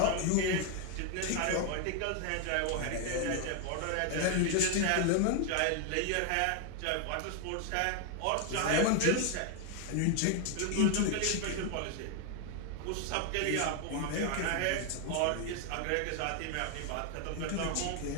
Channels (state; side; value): different; both; correlation 0.00